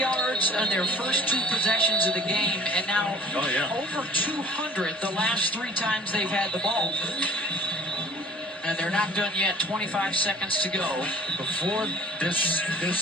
on their first 2 possessions of the game, and now over 200 the last 3 times they've had the ball. And they're not done yet. 25 seconds to go. Before the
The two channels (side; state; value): both; normal; correlation 0.49